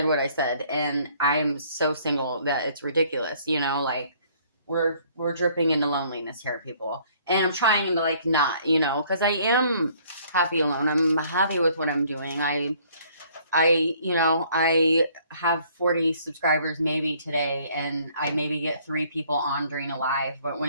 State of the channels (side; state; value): both; inverted; correlation -0.60